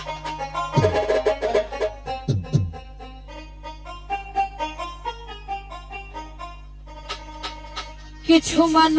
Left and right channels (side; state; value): both; identical; correlation 1.00